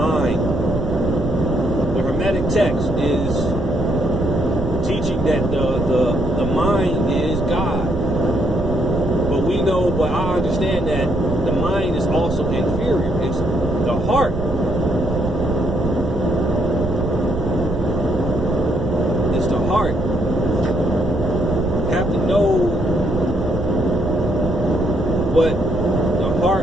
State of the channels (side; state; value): right; noise; rumble, 7 dB below the sound